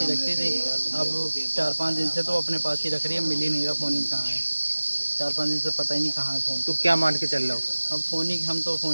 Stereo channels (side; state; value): both; inverted; correlation -1.00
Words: ही रखती थी। अब 4-5 दिन से तो अपने पास ही रख रही है, मिल ही नहीं रहा फ़ोन ही कहाँ है। 4-5 दिन से पता ही नहीं कहाँ है फ़ोन। तो क्या मान के चल रहा हो? अब फ़ोन ही, हम तो